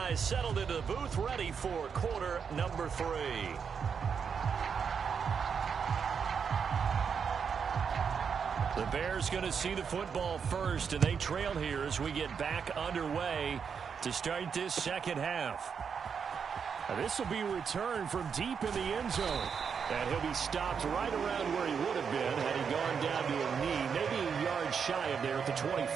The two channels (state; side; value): quieter; left; 6.6 dB